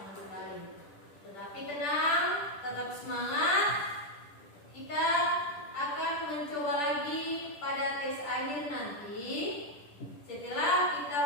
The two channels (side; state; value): right; late; 10 ms